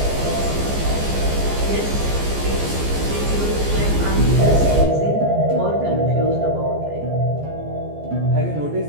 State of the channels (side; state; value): left; late; 14 ms